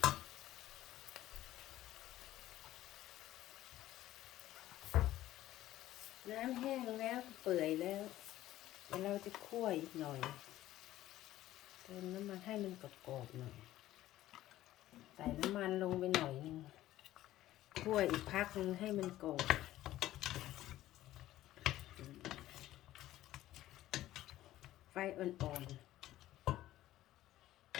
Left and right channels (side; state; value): right; quieter; 14.6 dB